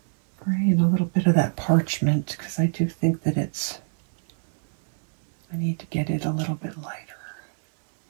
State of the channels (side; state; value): left; silent; digital silence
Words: Gray and a little bit of that parchment, because I do think that I need to get it a little bit lighter.